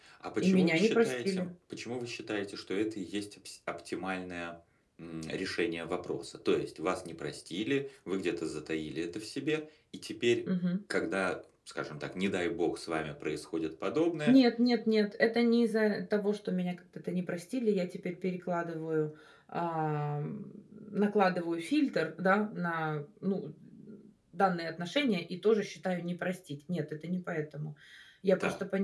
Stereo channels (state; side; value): identical; both; correlation 1.00